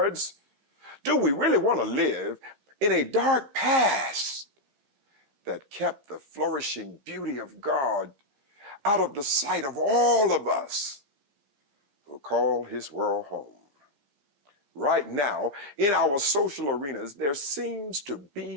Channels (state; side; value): late; left; 15 ms